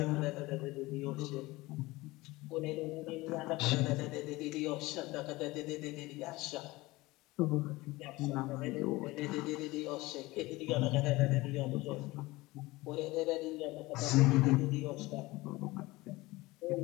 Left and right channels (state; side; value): quieter; right; 20.6 dB